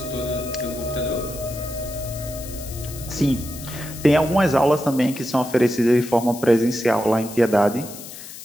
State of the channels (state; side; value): noise; left; hiss, 13 dB below the sound